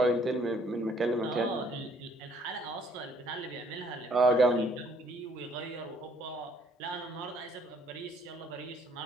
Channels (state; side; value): normal; both; correlation 0.63